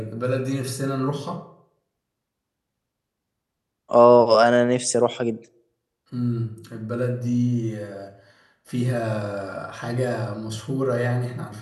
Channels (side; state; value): both; identical; correlation 1.00